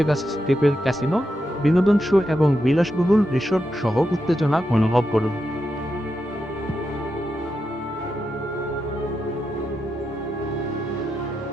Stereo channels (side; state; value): both; normal; correlation 0.86